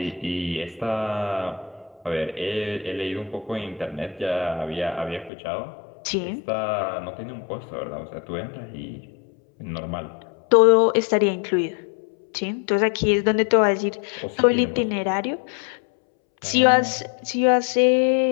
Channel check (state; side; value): drops out; right; at 5.3 s